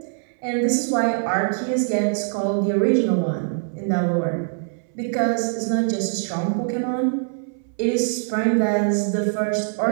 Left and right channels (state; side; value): silent; left; 63 dB below the other